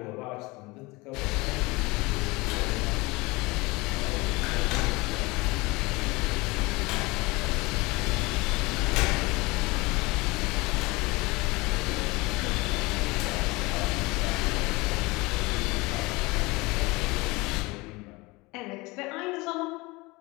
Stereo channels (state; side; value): quieter; right; 23.7 dB